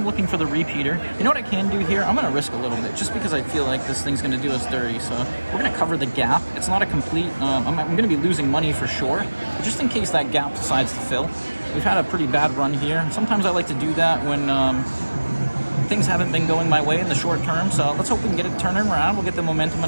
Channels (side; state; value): both; inverted; correlation -1.00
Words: looking for the repeater. You know what I can do here? I'm going to risk a little bit just because I feel like this thing's going to do us dirty. So we're going to cover the gap. It's not a complete, I'm going to be losing money for sure. But just in case that gap decides to fill. We've had a pretty bad run here. Sometimes I like to do that when things haven't been going my way in the short term. So let's hope we can get it turning around. We'll get the momentum